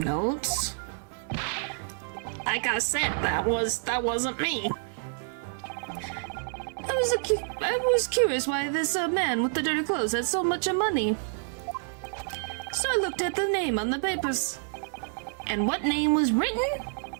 Like I said, that wasn't me. I was curious why this man with the dirty clothes had so much money. So I looked at the name on the papers. And what name was written?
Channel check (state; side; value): silent; left; 59 dB below the other